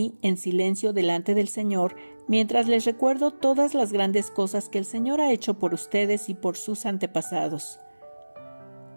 en silencio delante del Señor, mientras les recuerdo todas las grandes cosas que el Señor ha hecho por ustedes y por sus antepasados.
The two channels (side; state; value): both; inverted; correlation -1.00